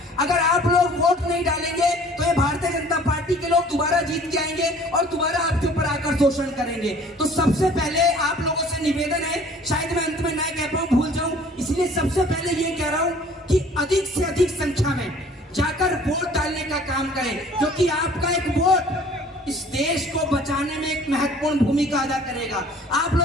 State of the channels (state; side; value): normal; both; correlation 0.51